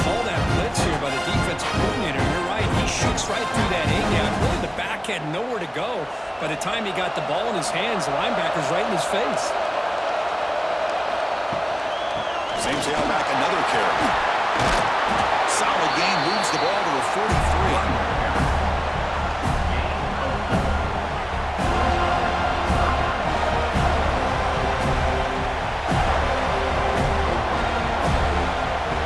call that blitz here by the defensive coordinator. You're right. He shoots right through that A-gap. Really, the back had nowhere to go. By the time he got the ball in his hands, the linebacker's right in his face. Same tailback, another carry. Solid gain, moves the ball to the 43.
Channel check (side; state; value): both; identical; correlation 1.00